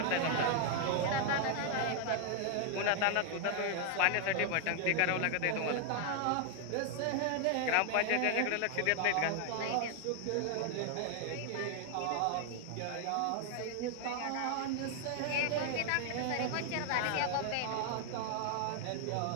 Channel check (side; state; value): both; different; correlation 0.00